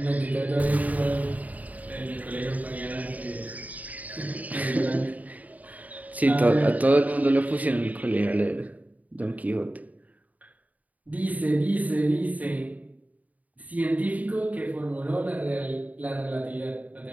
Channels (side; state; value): left; late; 0.074 ms